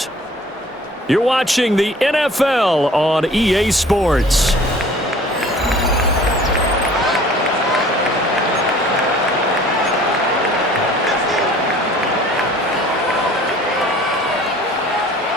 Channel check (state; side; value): normal; both; correlation 0.50